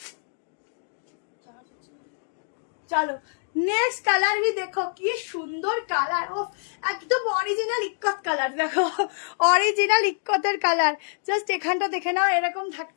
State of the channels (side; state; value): right; silent; digital silence